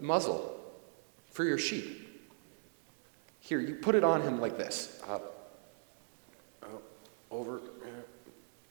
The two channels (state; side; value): silent; left; 52 dB below the other